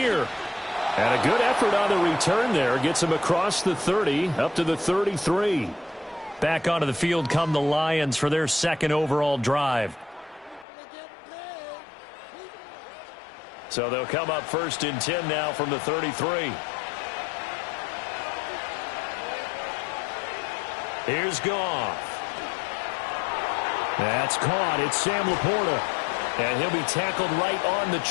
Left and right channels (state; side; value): drops out; right; at 10.7 s